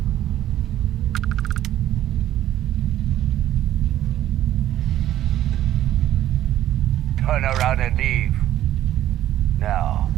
Turn around and leave. Now.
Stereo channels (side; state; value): left; quieter; 12.7 dB